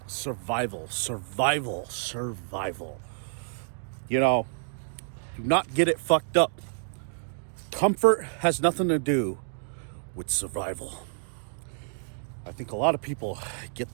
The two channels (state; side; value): silent; left; 59 dB below the other